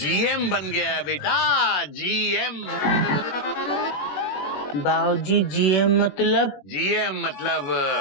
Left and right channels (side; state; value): right; late; 21 ms